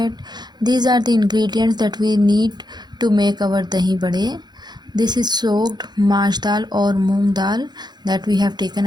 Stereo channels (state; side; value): late; left; 0.21 ms